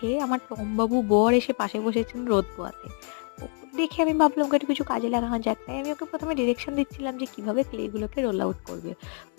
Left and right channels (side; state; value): right; quieter; 39.7 dB